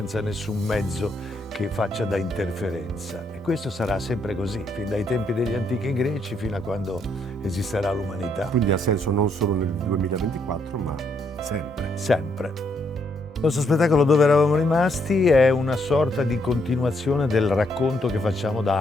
nessun mezzo che faccia da interferenza. E questo sarà sempre così, fin dai tempi degli antichi greci fino a quando esisterà l'umanità. Quindi ha senso non solo nel 2024, ma sempre. Sempre. Il nostro spettacolo Dove eravamo rimasti è una sorta di continuazione del racconto che facciamo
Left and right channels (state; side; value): normal; both; correlation 0.74